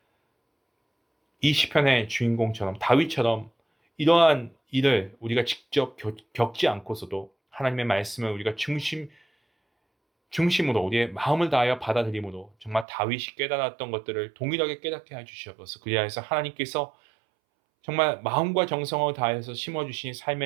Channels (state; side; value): drops out; left; at 12.9 s